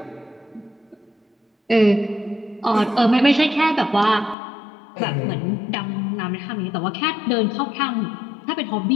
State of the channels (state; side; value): drops out; right; at 4.4 s